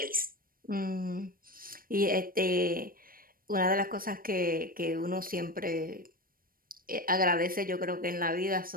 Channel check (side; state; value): left; late; 0.41 ms